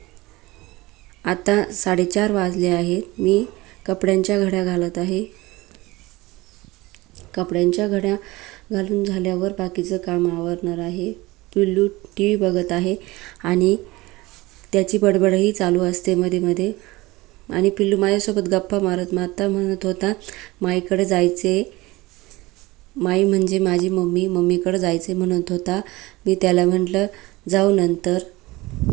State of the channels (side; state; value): left; quieter; 20.8 dB